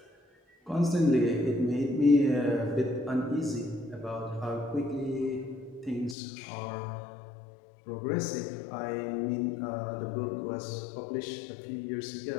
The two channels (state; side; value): drops out; right; at 6.2 s